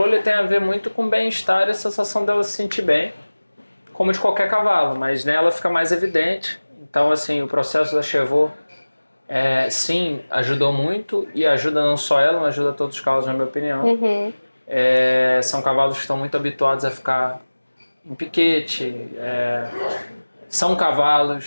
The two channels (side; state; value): both; inverted; correlation -1.00